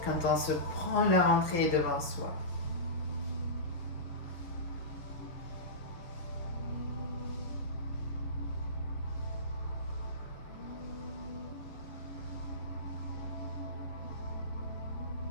quand on se prend la rentrée devant soi.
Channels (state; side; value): late; right; 6.3 ms